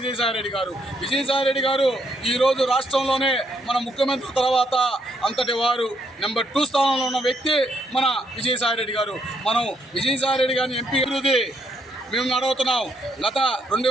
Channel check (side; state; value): both; normal; correlation 0.74